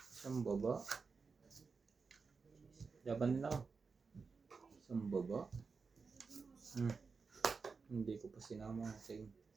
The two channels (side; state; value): left; quieter; 4.9 dB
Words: Isang baba. Laban din ako. Isang baba. Hindi ko pa sinama kasi.